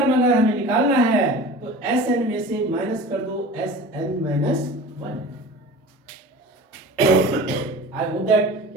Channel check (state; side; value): normal; both; correlation 0.37